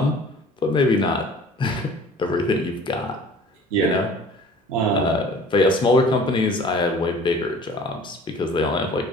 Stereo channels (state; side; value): normal; both; correlation 0.47